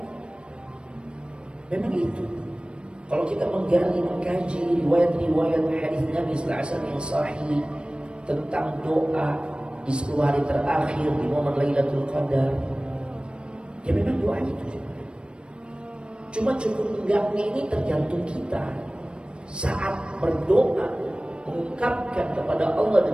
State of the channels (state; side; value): late; left; 0.056 ms